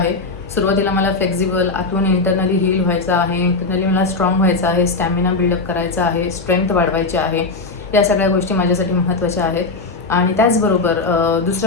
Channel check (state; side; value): quieter; right; 3.8 dB